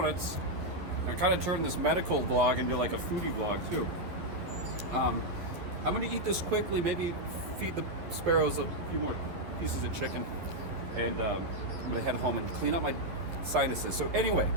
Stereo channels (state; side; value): late; left; 12 ms